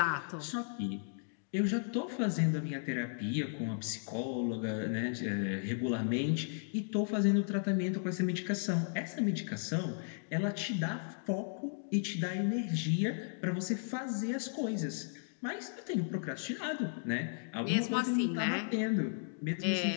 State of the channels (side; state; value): right; silent; digital silence